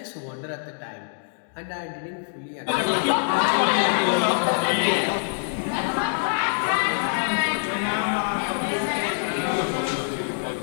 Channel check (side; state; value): right; silent; digital silence